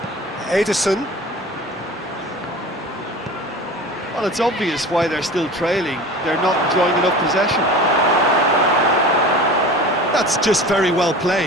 Ederson. Well, it's obvious why they're still trailing. They're not enjoying enough possession. That's just very well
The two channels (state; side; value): normal; both; correlation 0.36